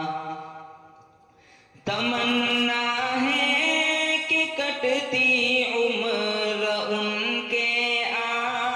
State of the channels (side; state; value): both; identical; correlation 1.00